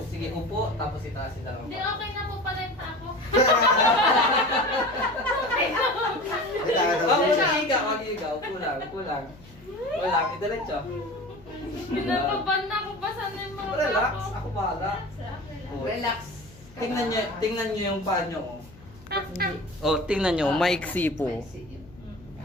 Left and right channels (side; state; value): left; noise; hum, 23 dB below the sound